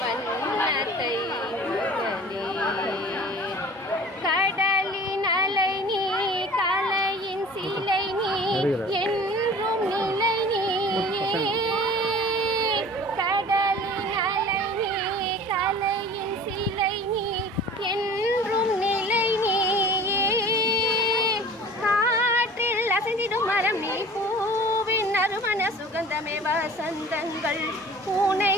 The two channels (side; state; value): both; normal; correlation 0.43